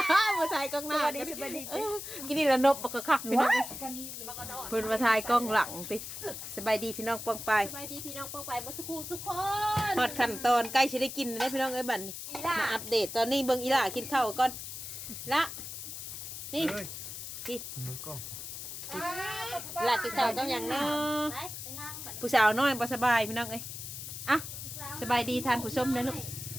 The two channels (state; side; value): noise; left; hiss, 8 dB below the sound